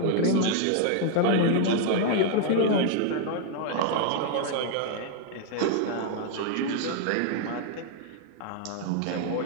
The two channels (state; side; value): different; both; correlation 0.00